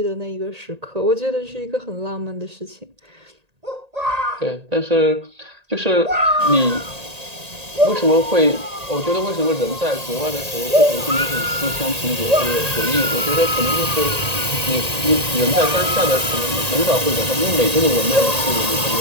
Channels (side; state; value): left; late; 1.8 ms